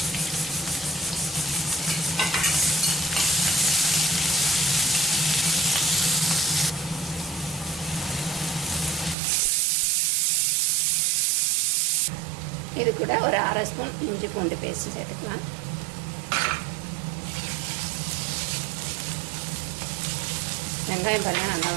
இது கூட ஒரு 1/2 ஸ்பூன் இஞ்சி பூண்டு பேஸ்ட் சேர்த்துக்கலாம். வெங்காயம் பாருங்கள் நல்லா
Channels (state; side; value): drops out; left; at 9.2 s